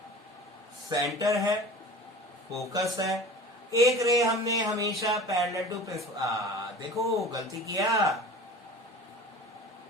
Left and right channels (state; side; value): normal; both; correlation 0.39